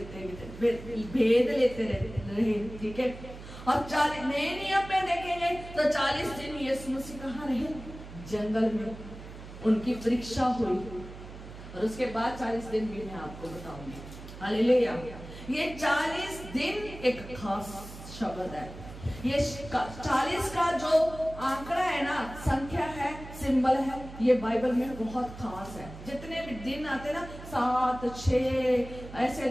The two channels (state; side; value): noise; right; hum, 14 dB below the sound